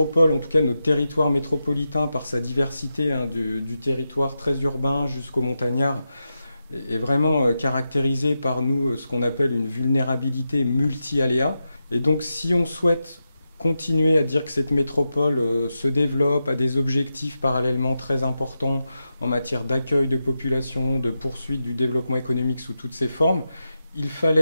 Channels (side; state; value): both; inverted; correlation -0.89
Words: en tout cas notre territoire métropolitain, par sa diversité, hein, du territoire très urbain jusqu'au montagnard, est vraiment caractérisé par nous ce qu'on appelle une vulnérabilité multi-aléas. Et donc si on souhaite continuer à dire que cette métropole se développe, a des objectifs parallèlement très importants en matière d'accueil de population, de poursuite du développement économique sous toutes ses formes, il